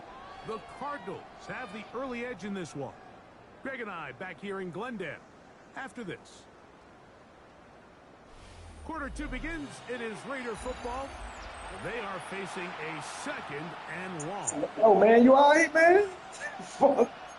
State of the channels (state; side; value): identical; both; correlation 1.00